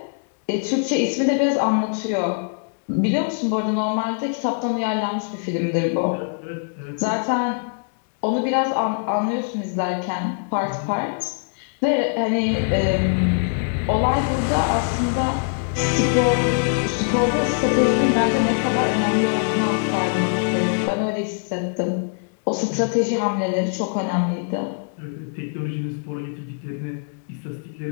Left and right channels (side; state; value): right; silent; digital silence